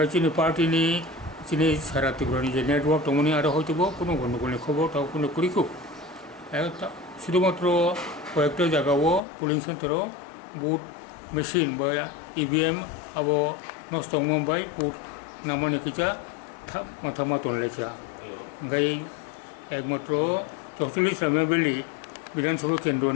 जोंनि पार्टीनि जोंनि सारा त्रिपुरानि जे नेटवर्क दंमोन आरो हयतोबो कोनो गन्डगोलनि खबर ताव कोनो करिखौ शुधुमात्र कयेकटा जायगायाव पोलिंग सेन्टाराव बुट मेशिन बा EVM आबो नष्ट मोनबाय बुट नामानि किजा माथा मातन लेखा ओंखाय एकमात्र 44 रामियाबिलि विधानसभा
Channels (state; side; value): drops out; right; at 9.2 s